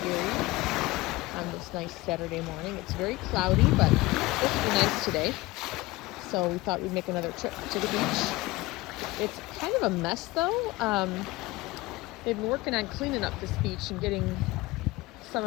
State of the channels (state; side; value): quieter; right; 20.5 dB